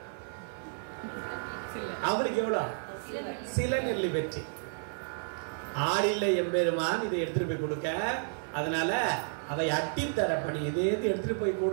அவருக்கு எவ்வளோ? சில நெல்லி பெற்றேன். ஆளில்லை எம்பெருமான் இதை எடுத்துட்டு போய் கொடுக்க, அதனால அதை அட்டித்தர பணி, இதை எடுத்துட்டு போய்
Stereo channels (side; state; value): left; silent; digital silence